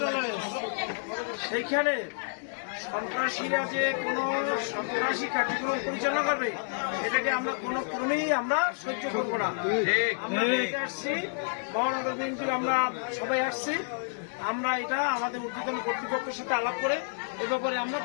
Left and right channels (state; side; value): silent; right; digital silence